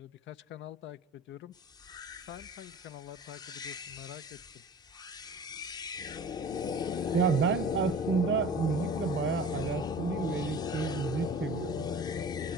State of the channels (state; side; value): normal; both; correlation 0.40